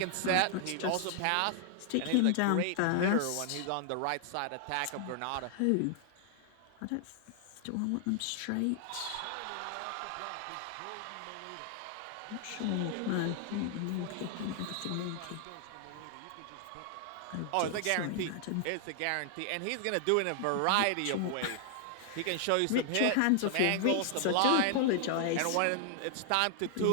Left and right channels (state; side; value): different; both; correlation 0.00